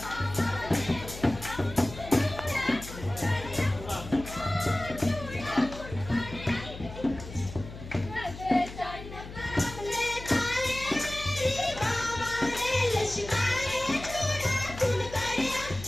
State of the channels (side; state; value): left; noise; hum, 13 dB below the sound